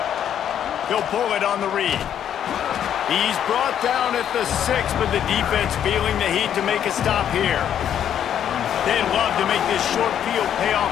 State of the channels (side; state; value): right; quieter; 9.7 dB